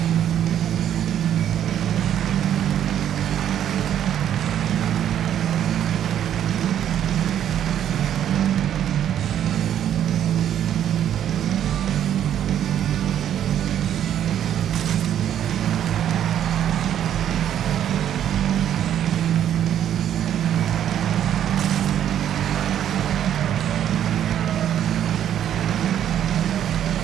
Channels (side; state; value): left; quieter; 10.3 dB